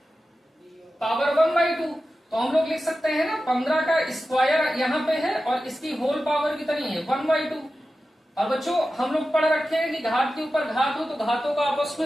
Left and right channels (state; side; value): normal; both; correlation 0.93